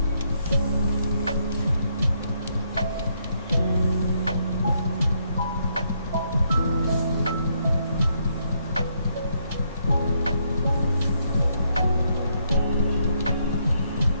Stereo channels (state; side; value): inverted; both; correlation -0.74